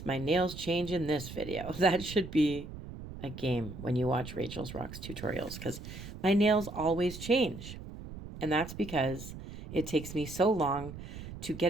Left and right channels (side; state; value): right; noise; rumble, 11 dB below the sound